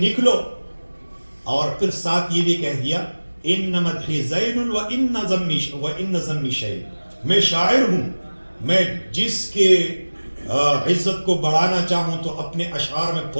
اور پھر ساتھ یہ بھی کہہ دیا ان مدحی زین وان ذمی شیء، میں شاعر ہوں، میں جس کے عزت کو بڑھانا چاہوں تو اپنے اشعار میں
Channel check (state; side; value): inverted; both; correlation -1.00